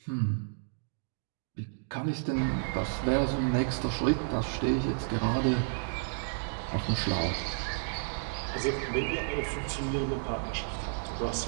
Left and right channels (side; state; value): left; silent; digital silence